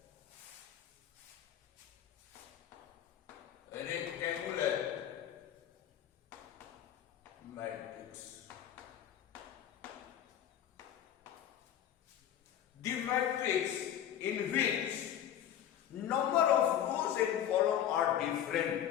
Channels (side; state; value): right; quieter; 10.5 dB